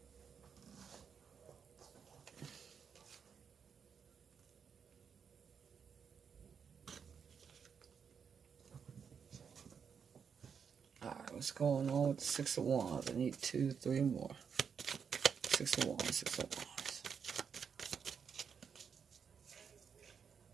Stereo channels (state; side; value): quieter; left; 6.8 dB